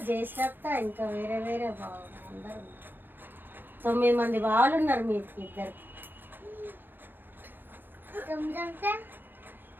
జయశ్రాప్త, ఇంకా వేరే బావులు అందరు ఉన్నారు. 9 మంది బావులు ఉన్నారు మీకు ఇద్దరు.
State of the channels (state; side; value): late; left; 0.095 ms